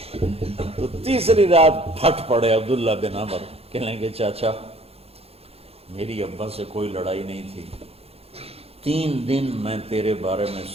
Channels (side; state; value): left; late; 0.29 ms